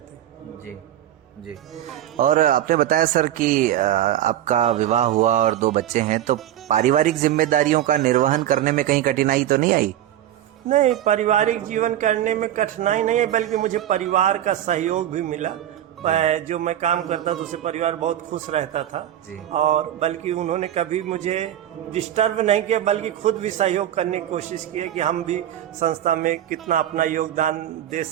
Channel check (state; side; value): quieter; left; 11.9 dB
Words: हैं जी जी। और आपने बताया सर कि आपका विवाह हुआ और 2 बच्चे हैं, तो पारिवारिक जिम्मेदारियों का निर्वहन करने में कहीं कठिनाई तो नहीं आई? नहीं, पारिवारिक जीवन करने में कठिनाई नहीं है, बल्कि मुझे परिवार का सहयोग भी मिला। जो मैं काम करता था उससे परिवार बहुत खुश रहता था और बल्कि उन्होंने कभी मुझे डिस्टर्ब नहीं किया, बल्कि खुद भी सहयोग करने की कोशिश की है कि हम भी संस्था में कितना अपना योगदान दे